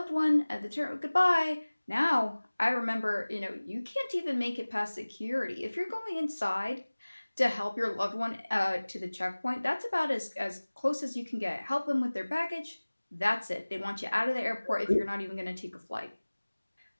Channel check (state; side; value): inverted; both; correlation -1.00